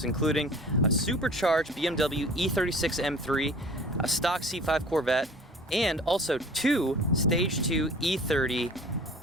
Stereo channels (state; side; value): normal; both; correlation 0.45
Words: including a supercharged BMW E36 M3, a stock C5 Corvette, and also 2 Stage 2 E30